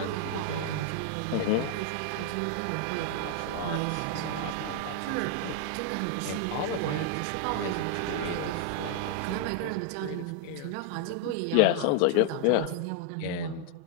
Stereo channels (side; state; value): both; different; correlation 0.00